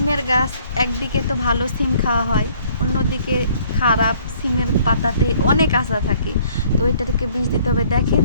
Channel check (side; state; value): both; inverted; correlation -0.60